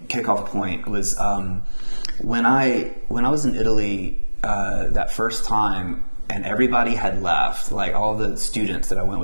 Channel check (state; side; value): inverted; both; correlation -1.00